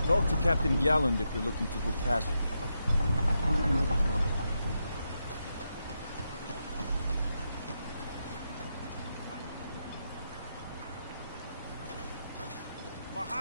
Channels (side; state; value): both; inverted; correlation -0.84